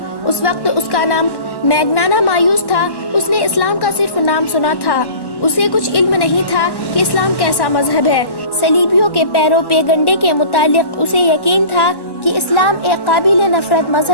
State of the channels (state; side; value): late; right; 1.1 ms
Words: اس وقت اس کا نام میگنانا مایوس تھا۔ اس نے اسلام کا صرف نام سنا تھا، اسے کچھ علم نہیں تھا کہ اسلام کیسا مذہب ہے۔ صلیبیوں کے پیرو پیگنڈے کے متعلق اسے یقین تھا کہ اسلام ایک قابل نفرت